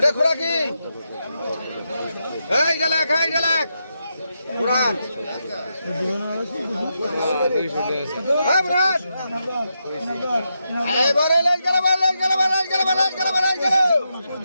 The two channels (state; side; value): inverted; both; correlation -0.85